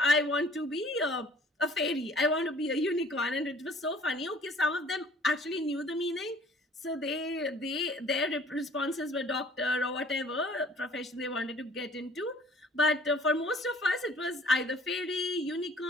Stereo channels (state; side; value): normal; both; correlation 0.53